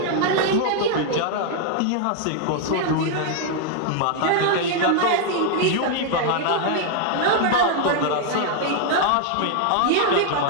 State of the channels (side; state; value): both; different; correlation 0.00